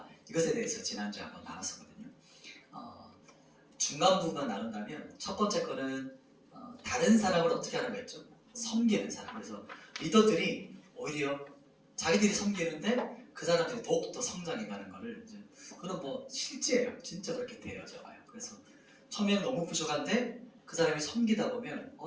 이것에 대해서 지난주에 한번 나눴었거든요. 중간 부분만 나눈다면 첫 번째 거는 다른 사람을 어떻게 하는 거였죠? 섬기는 사람. 그래서 리더들이 오히려 자기들이 섬기는데 그 사람들이 더욱더 성장해가는 거를 이제 그건 뭐 실제예요. 진짜 그렇게 되어져 와요. 그래서 처음에는 너무 부족한데 그 사람이 섬기다 보면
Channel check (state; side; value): identical; both; correlation 1.00